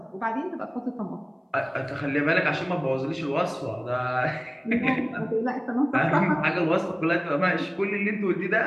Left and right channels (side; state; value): both; identical; correlation 1.00